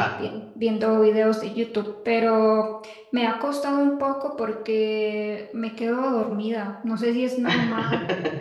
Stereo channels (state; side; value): identical; both; correlation 1.00